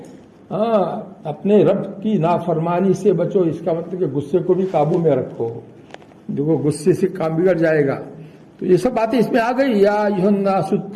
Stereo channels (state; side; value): identical; both; correlation 1.00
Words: اپنے رب کی نافرمانی سے بچو، اس کا مطلب کہ غصے کو بھی قابو میں رکھو، دیکھو غصے سے کام بگڑ جائے گا۔ تو یہ سب باتیں اس میں آ گئی، یا ایھا الناس